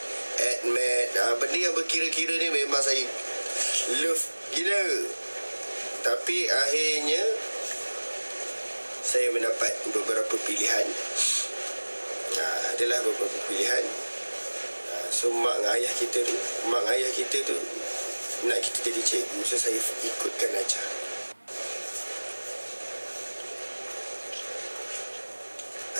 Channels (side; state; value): both; inverted; correlation -1.00